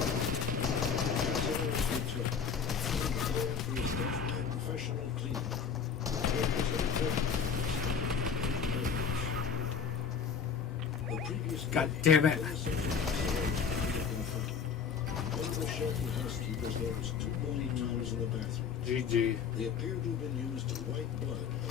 Castelara's retook, and the plan for his death by a professional cleaning crew. It was important. The previous God day, damn it. One of the shelter housekeepers noticed 2 bloody towels in the bathroom. GG. They appeared to have been used to wipe blood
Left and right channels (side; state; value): right; quieter; 6.6 dB